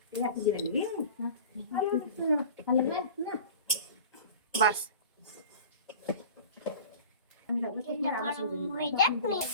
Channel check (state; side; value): inverted; both; correlation -0.39